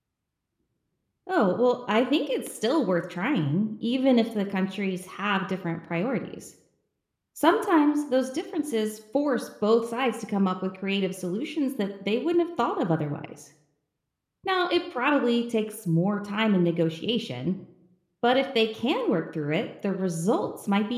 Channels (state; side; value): identical; both; correlation 1.00